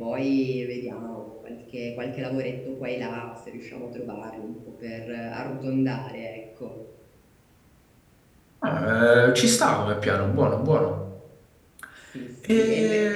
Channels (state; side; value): identical; both; correlation 1.00